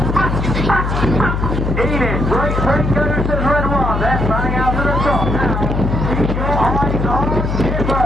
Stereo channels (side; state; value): left; noise; hum, 1 dB below the sound